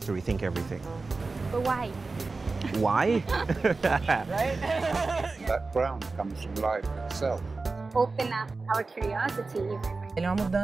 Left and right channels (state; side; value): quieter; left; 3.8 dB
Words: to rethink everything. But why? Why? That ground comes from life itself. Open up our curiosity. Ele é uma